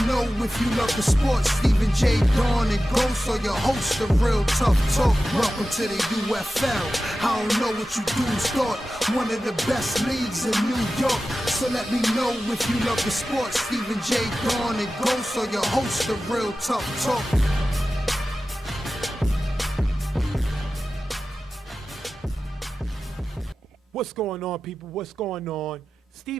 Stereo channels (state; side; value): normal; both; correlation 0.94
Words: know if you love the sports. Stephen J. Dawn and Ghost are your hosts of Real Tough Talk. Welcome to the UFL. I don't know what you dudes thought. One of the best leagues in New York. So let me know if you love the sports. Stephen J. Dawn and Ghost are your hosts of Real Tough Talk. What's going on, people? What's going on?